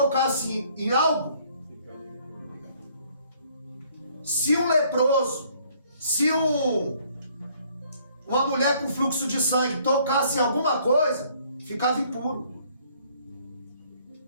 em algo, se um leproso, se uma mulher com fluxo de sangue tocasse em alguma coisa, ficava impuro.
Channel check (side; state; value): both; inverted; correlation -0.62